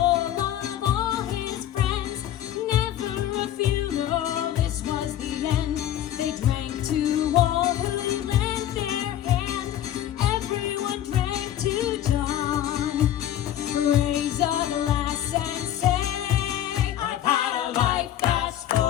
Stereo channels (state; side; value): quieter; right; 11.7 dB